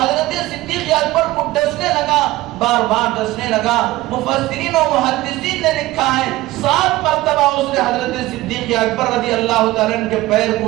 حضرت صدیق اکبر کو ڈسنے لگا، بار بار ڈسنے لگا۔ مفسرین و محدثین نے لکھا ہے 7 مرتبہ اس نے حضرت صدیق اکبر رضی اللہ تعالیٰ عنہ کے پیر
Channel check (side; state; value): left; quieter; 17.9 dB